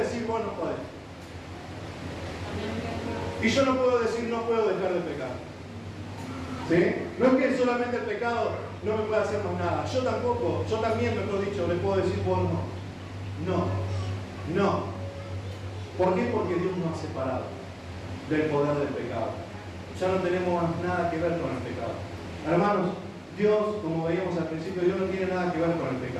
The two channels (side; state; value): both; identical; correlation 1.00